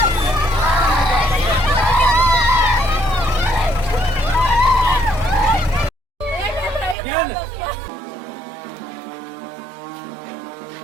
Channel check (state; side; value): drops out; left; at 7.0 s